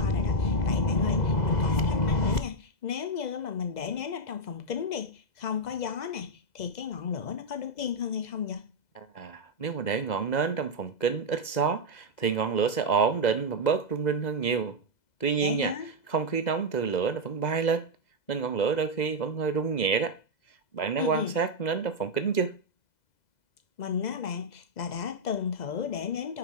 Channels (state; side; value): late; right; 2.0 ms